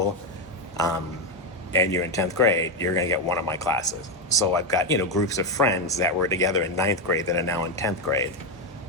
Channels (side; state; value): both; normal; correlation 0.08